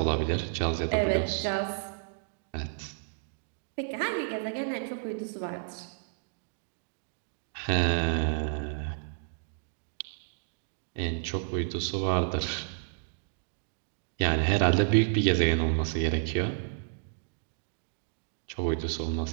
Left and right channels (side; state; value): left; silent; digital silence